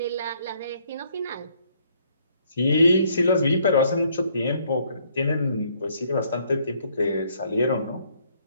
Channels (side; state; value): both; inverted; correlation -0.67